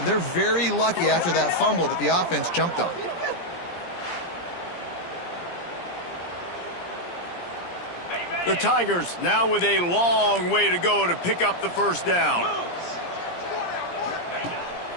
they're very lucky after that fumble that the offense jumped on. The Tigers now with a long way to go to pick up the 1st down.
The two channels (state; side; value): late; right; 17 ms